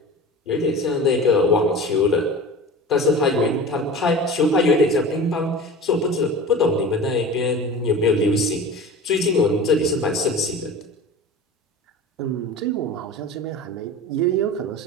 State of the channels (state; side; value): normal; both; correlation 0.35